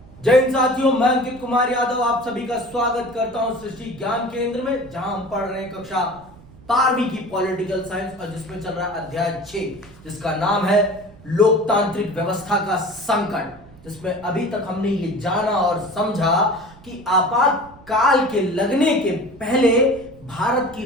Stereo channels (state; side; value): noise; right; rumble, 22 dB below the sound